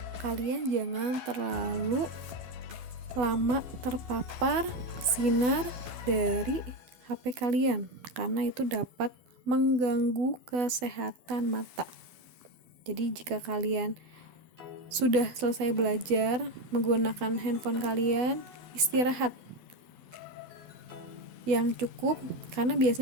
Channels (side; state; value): left; late; 12 ms